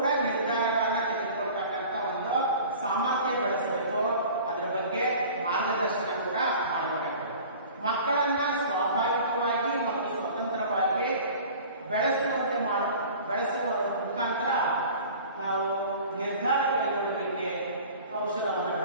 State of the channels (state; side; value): inverted; both; correlation -0.43